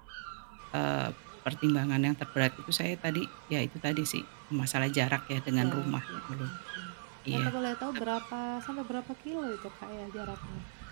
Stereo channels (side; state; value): left; silent; 54 dB below the other